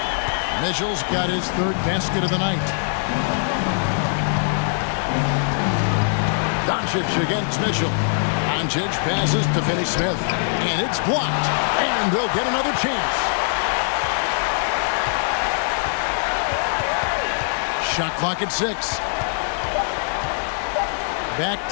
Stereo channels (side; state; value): right; silent; digital silence